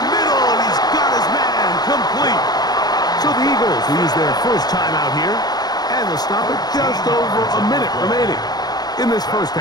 middle, and he's got his man complete. So the Eagles will use their first time out here, and they'll stop it just over a minute remaining in this first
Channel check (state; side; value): late; right; 0.19 ms